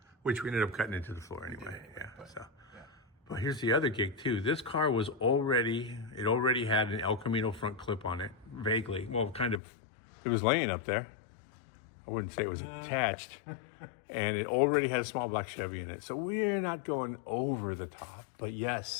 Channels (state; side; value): drops out; right; at 9.6 s